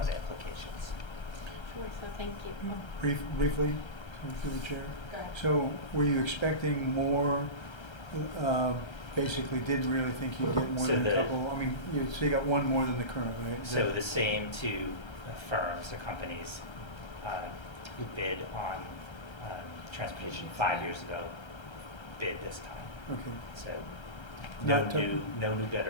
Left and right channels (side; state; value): right; late; 1.3 ms